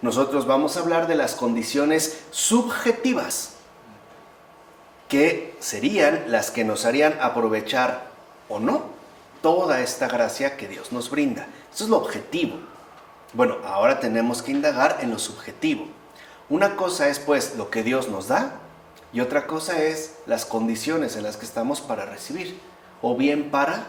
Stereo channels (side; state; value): both; identical; correlation 1.00